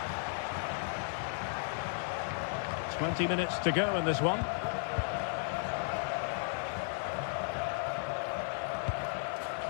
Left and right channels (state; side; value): silent; right; digital silence